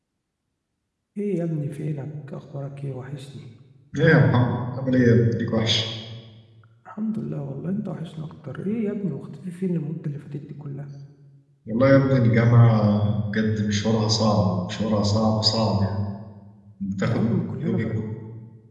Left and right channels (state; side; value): identical; both; correlation 1.00